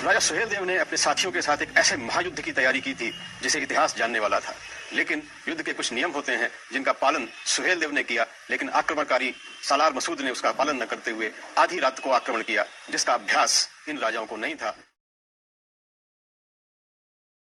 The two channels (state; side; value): identical; both; correlation 1.00